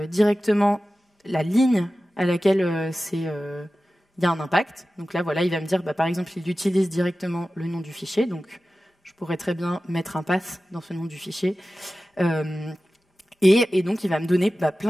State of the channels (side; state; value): both; normal; correlation 0.95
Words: directement la ligne à laquelle il y a un impact. Donc là, voilà, il va me dire, par exemple, il utilise directement le nom du fichier. Donc, je pourrais très bien mettre un path dans ce nom du fichier. Et donc, il va me donner